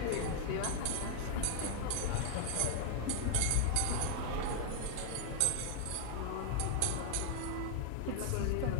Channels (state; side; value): different; both; correlation -0.01